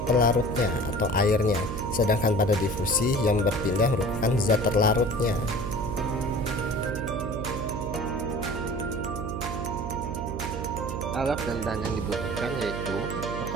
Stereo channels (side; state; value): right; noise; hum, 5 dB below the sound